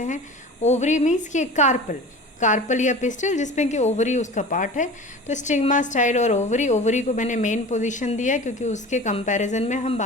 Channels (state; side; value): normal; both; correlation 0.37